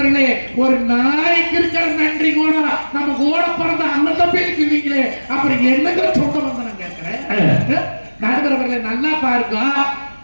ஒரு நாய்க்கு இருக்கிற நன்றி கூட நம்ம கூட பிறந்த அண்ணன் தம்பிக்கு இல்லைங்களே, அப்புறம் என்னங்க சொந்த பந்தம் நான் கேட்கிறேன். நடுவரவர்களே நல்லா பாருங்க,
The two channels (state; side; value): inverted; both; correlation -1.00